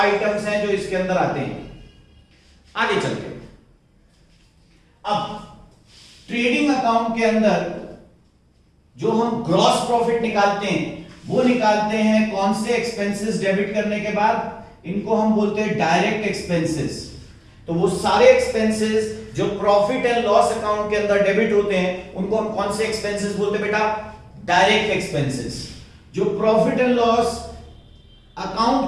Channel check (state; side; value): identical; both; correlation 1.00